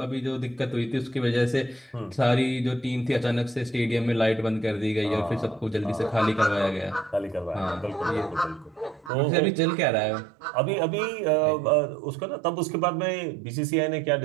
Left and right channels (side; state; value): left; drops out; at 9.1 s